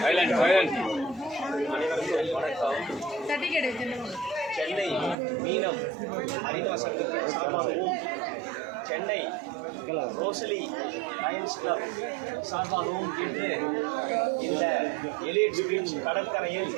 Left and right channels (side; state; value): left; drops out; at 5.2 s